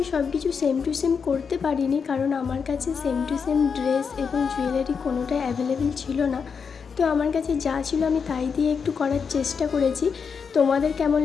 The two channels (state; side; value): quieter; right; 6.0 dB